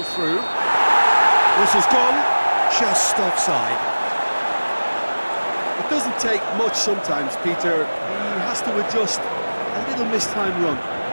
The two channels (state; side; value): inverted; both; correlation -1.00